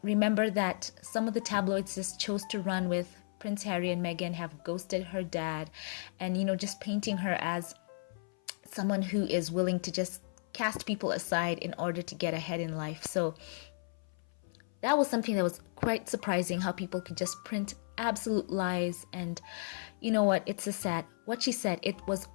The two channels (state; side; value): silent; right; 55 dB below the other